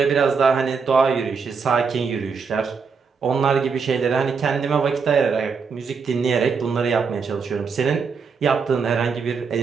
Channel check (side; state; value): left; quieter; 5.5 dB